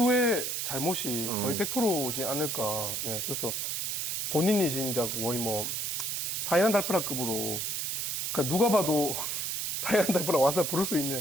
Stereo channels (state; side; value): noise; right; hiss, 1 dB below the sound